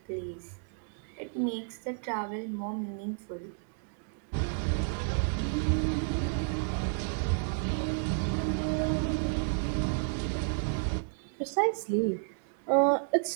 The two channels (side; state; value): left; silent; digital silence